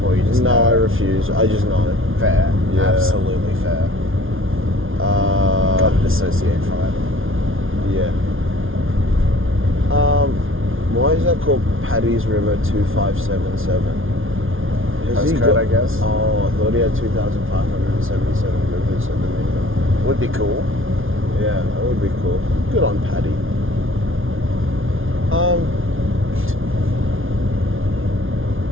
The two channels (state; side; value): late; left; 0.59 ms